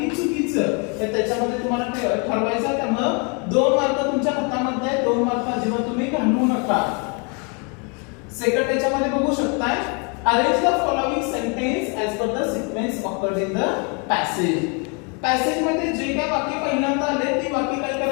चुकीचं, तर त्याच्यामध्ये तुम्हाला ठरवायचं आहे. त्यामुळे 2 मार्क तुमच्या हातामध्ये आहे, 2 मार्क अजिबात तुम्ही घालवू नका. सेकंड त्याच्यामध्ये बघू शकताय, arrange the following sentence as per the sequence occurred in the passage. Passage मध्ये जे काय वाक्य पहिल्यांदा आले ती वाक्य काय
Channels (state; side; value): quieter; right; 33.2 dB